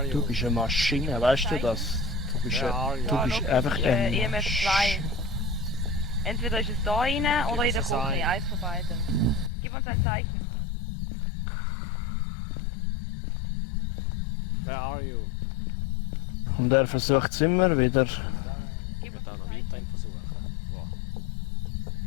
you? Du bist eine Maschine, weißt du das? Du bist, Where are you? du bist einfach ein EMF 2. Entweder ist es da rein oder in der es ein. Küche, eins von beiden. Gib uns ein Zeichen. Where are you? Und er versucht es immer wieder. Gib uns ein Zeichen.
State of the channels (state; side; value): drops out; right; at 9.5 s